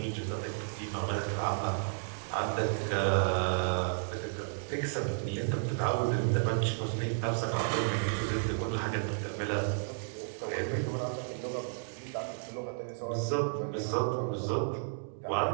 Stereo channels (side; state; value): left; silent; digital silence